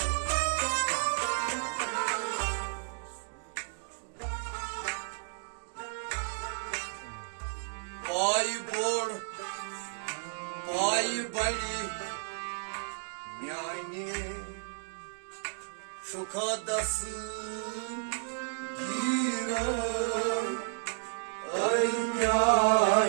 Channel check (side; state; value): left; silent; digital silence